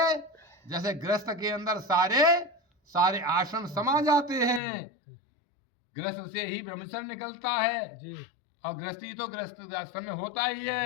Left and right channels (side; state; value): right; drops out; at 4.6 s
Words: गृहस्थ के अंदर सारे आश्रम समा जाते हैं, गृहस्थ से ही ब्रह्मचर्य निकलता है, जी और गृहस्थी तो गृहस्थ आश्रम में होता ही